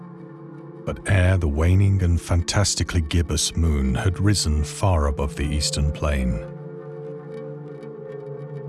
but ere the waning and fantastically gibbous moon had risen far above the eastern plain,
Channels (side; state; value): both; identical; correlation 1.00